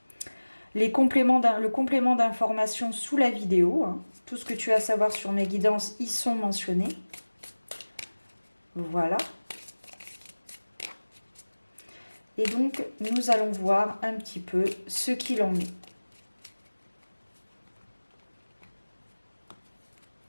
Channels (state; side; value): inverted; both; correlation -1.00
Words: le complément d'information sous la vidéo. Hein. Tout ce que tu as à savoir sur mes guidances y sont mentionnés. Voilà. Et donc, nous allons voir un petit peu ce qu'il en est.